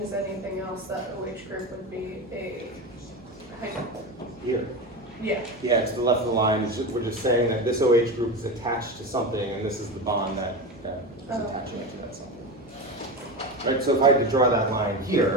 is anything else, that OH group would be a Here. yeah. Yeah, to the left of the line, we're just saying that this OH group is attached to something, and this is the bond that is attaching it to that something. Right, so if I could draw that line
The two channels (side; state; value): both; normal; correlation 0.22